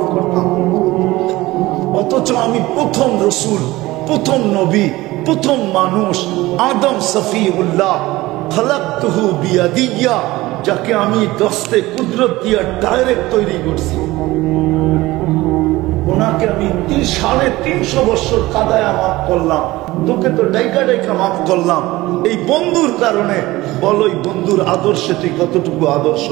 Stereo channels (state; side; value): quieter; left; 18.9 dB